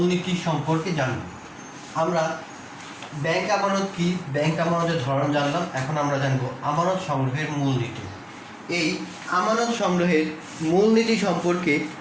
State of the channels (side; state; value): both; identical; correlation 1.00